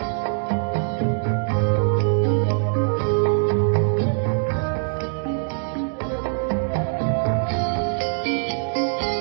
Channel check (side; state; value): left; silent; digital silence